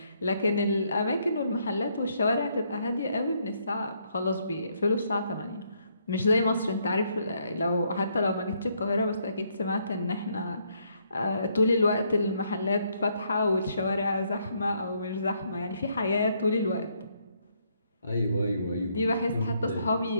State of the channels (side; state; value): both; inverted; correlation -0.72